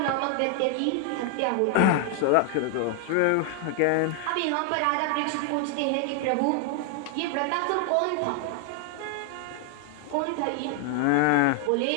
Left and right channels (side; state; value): both; different; correlation 0.00